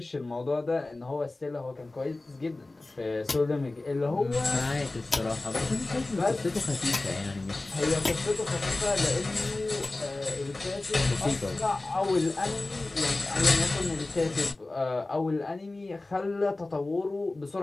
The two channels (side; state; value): right; quieter; 3.0 dB